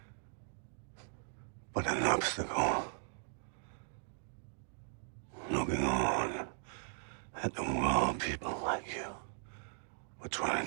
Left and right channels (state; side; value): silent; left; digital silence